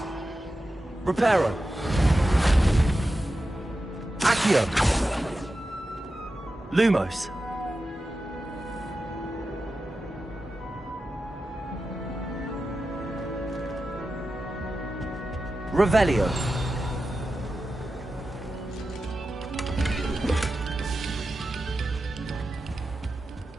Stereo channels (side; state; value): both; normal; correlation 0.92